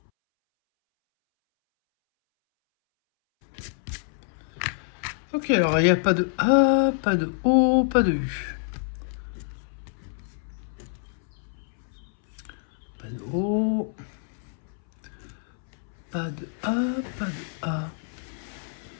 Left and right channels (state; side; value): silent; right; 60 dB below the other